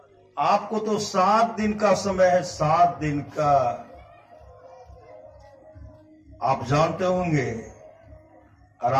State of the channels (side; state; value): both; identical; correlation 1.00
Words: आपको तो 7 दिन का समय है, 7 दिन का। आप जानते होंगे